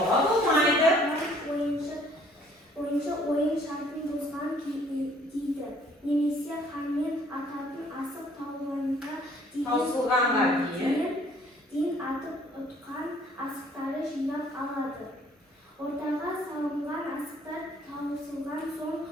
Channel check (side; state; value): both; normal; correlation 0.59